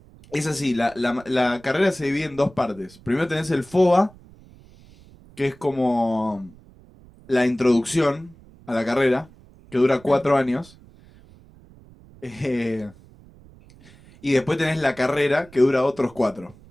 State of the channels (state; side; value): noise; right; rumble, 24 dB below the sound